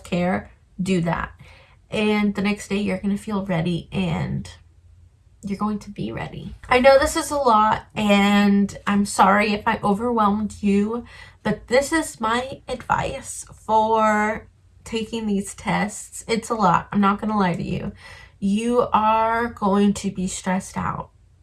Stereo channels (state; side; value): identical; both; correlation 1.00